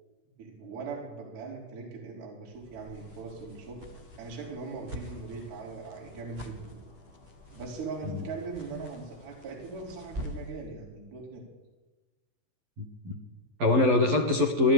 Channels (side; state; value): left; late; 11 ms